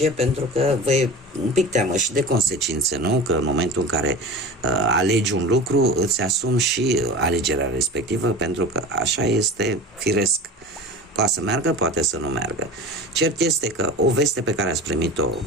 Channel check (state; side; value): normal; both; correlation 0.33